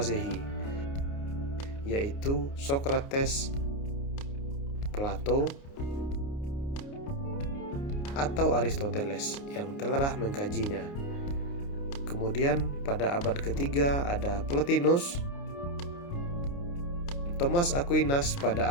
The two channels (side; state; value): right; late; 29 ms